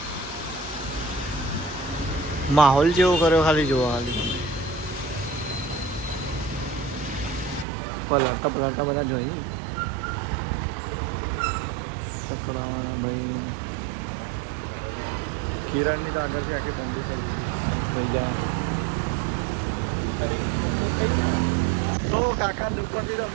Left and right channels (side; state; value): left; drops out; at 7.7 s